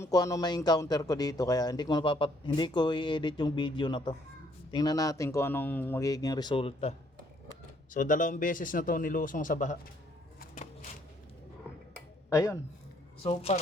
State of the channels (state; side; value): normal; both; correlation 0.66